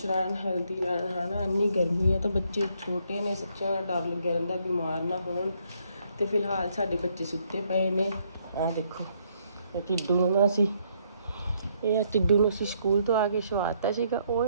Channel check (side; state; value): both; inverted; correlation -0.71